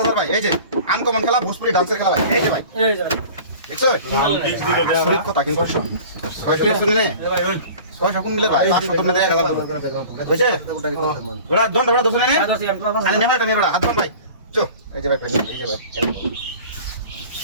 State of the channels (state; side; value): inverted; both; correlation -0.42